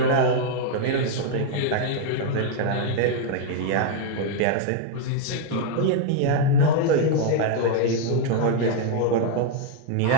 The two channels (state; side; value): different; both; correlation 0.00